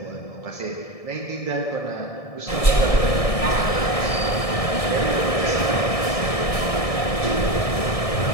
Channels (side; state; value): right; late; 1.7 ms